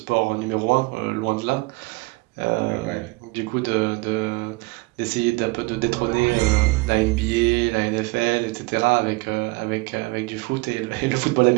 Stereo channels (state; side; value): quieter; left; 24.9 dB